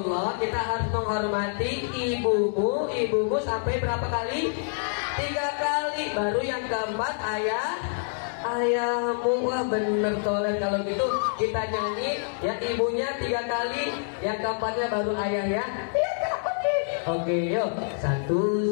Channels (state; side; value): silent; right; digital silence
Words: kita harus menghormati ibumu sampai berapa kali? 3 kali. Baru yang keempat ayahmu. Wah bener Tolet, kalau gitu kita nyanyi ya, ibunya 3 kali, yang keempatnya baru ayah ya. Iya Kak, oke yuk.